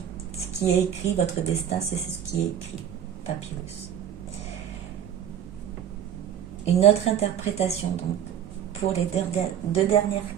Ce qui est écrit, votre destin, c'est ce qui est écrit. Papyrus. Une autre interprétation, donc, pour les deux dernières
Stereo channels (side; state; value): left; quieter; 9.4 dB